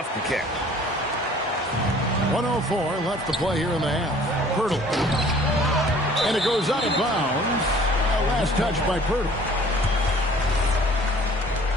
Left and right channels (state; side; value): normal; both; correlation 0.52